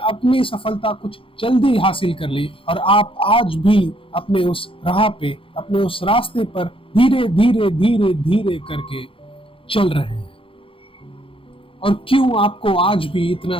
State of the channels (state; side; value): late; right; 0.26 ms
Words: सफलता कुछ जल्दी हासिल कर ली और आप आज भी अपने उस राह पे, अपने उस रास्ते पर धीरे धीरे धीरे धीरे करके चल रहे हैं। और क्यों आपको आज भी